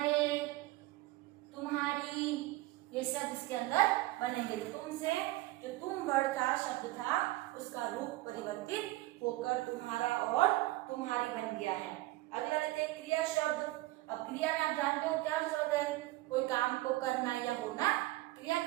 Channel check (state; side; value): quieter; left; 18.5 dB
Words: तुम्हारी, ये शब्द इसके अंदर बनेंगे। तुम से जो तुम वर्ड का शब्द था उसका रूप परिवर्तित होकर तुम्हारा और तुम्हारी बन गया है। अगला लेते हैं क्रिया शब्द। अब क्रिया में आप जानते हो क्या शब्द है? कोई काम को करना या होना क्रिया